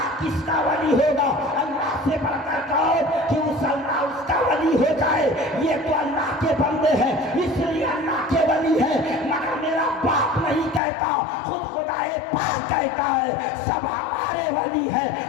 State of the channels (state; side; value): drops out; right; at 10.8 s